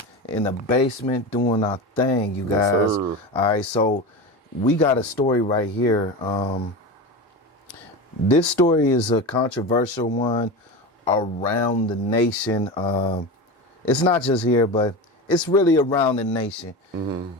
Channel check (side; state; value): both; normal; correlation 0.25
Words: In the basement doing our thing, you guys. Yes, sir. All right, so we got a story right here. This story is a controversial one around the nation. It's not just here, but it's really around the nation.